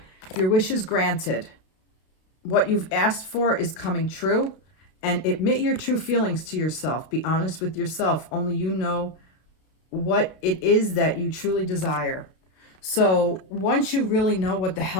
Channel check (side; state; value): right; late; 32 ms